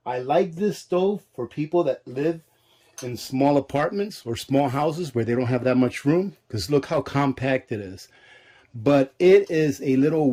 I like this stove for people that live in small apartments or small houses where they don't have that much room, because look how compact it is. But it is a little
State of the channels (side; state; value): both; identical; correlation 1.00